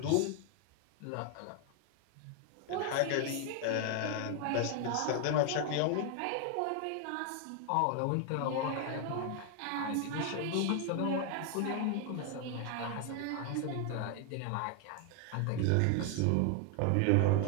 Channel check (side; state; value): both; different; correlation 0.01